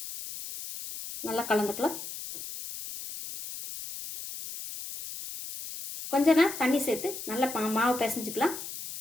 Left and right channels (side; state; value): left; noise; hiss, 9 dB below the sound